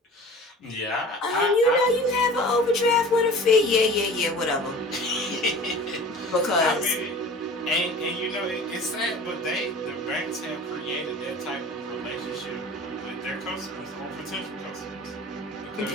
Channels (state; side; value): normal; both; correlation 0.41